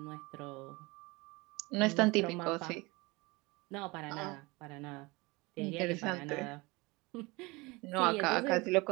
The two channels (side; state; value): left; quieter; 24.4 dB